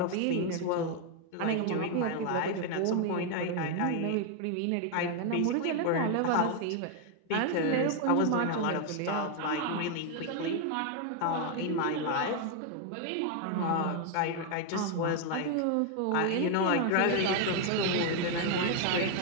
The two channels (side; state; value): both; different; correlation 0.01